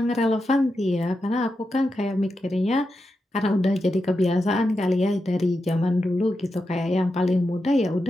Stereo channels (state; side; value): normal; both; correlation 0.88